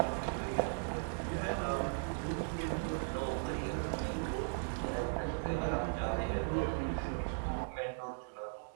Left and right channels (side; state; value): left; silent; digital silence